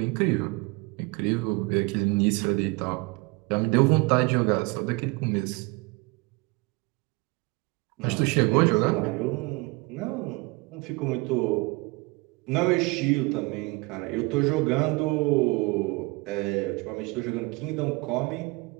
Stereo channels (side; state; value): left; quieter; 26.1 dB